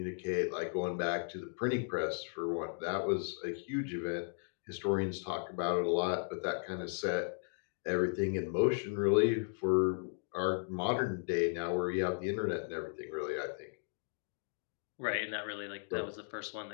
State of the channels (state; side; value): silent; right; digital silence